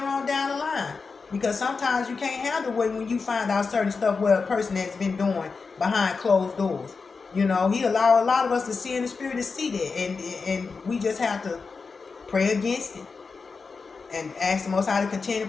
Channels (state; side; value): quieter; right; 4.7 dB